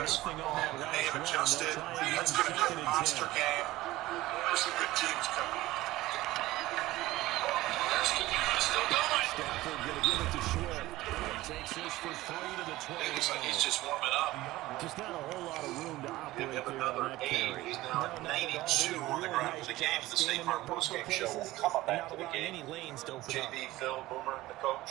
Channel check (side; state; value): left; quieter; 17.5 dB